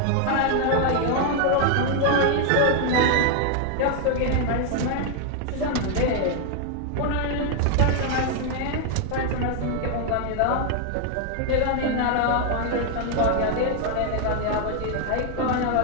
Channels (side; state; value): both; different; correlation 0.00